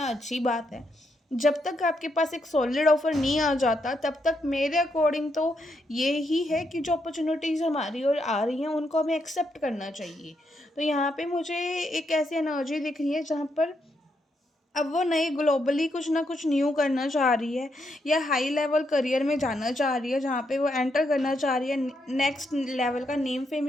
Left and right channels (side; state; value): both; normal; correlation 0.79